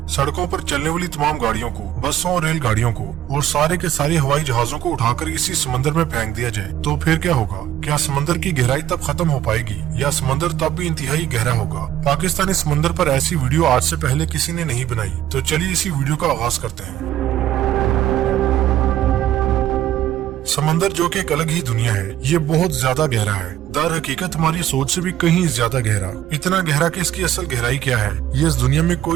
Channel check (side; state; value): left; quieter; 11.9 dB